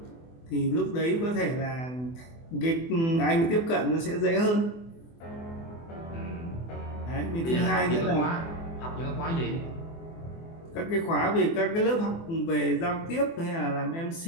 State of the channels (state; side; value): late; right; 24 ms